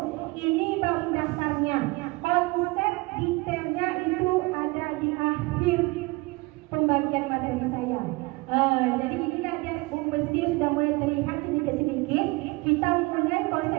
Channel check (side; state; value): left; quieter; 24.2 dB